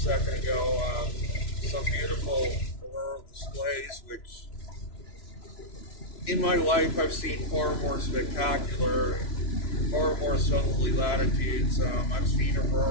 ago, some beautiful auroral displays, which in my life I've seen far more spectacular, far more southerly latitudes. I've seen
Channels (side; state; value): right; late; 3.0 ms